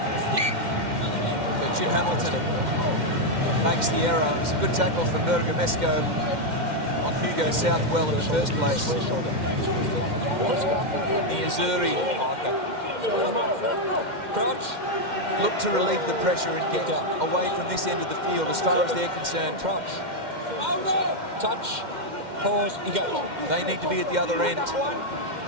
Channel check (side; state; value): left; late; 2.1 ms